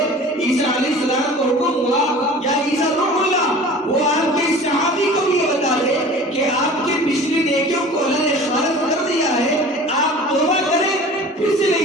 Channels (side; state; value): both; normal; correlation 0.41